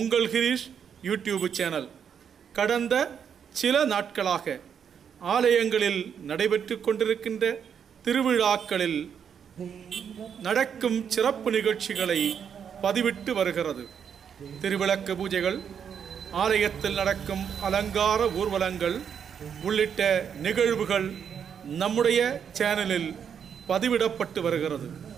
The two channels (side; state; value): left; quieter; 7.7 dB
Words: கிரீஷ் யூடியூப் சேனல் கடந்த சில நாட்களாக ஆலயங்களில் நடைபெற்று கொண்டிருக்கின்ற திருவிழாக்களில் நடக்கும் சிறப்பு நிகழ்ச்சிகளை பதிவிட்டு வருகிறது. திருவிளக்கு பூஜைகள், ஆலயத்தில் நடக்கும் அலங்கார ஊர்வலங்கள் உள்ளிட்ட நிகழ்வுகள் நம்முடைய சேனலில் பதிவிடப்பட்டு வருகிறது.